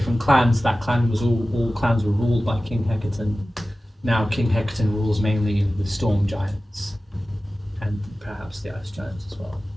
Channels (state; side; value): normal; both; correlation 0.96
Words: clans, that clan was all clans were ruled by King Hecaton. Now King Hecaton rules mainly the storm giants and perhaps the ice giants as well.